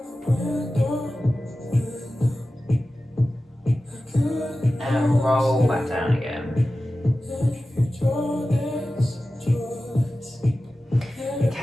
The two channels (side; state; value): both; normal; correlation 0.94